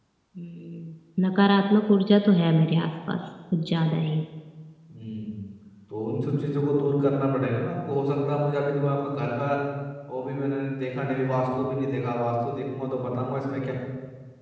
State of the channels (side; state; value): both; identical; correlation 1.00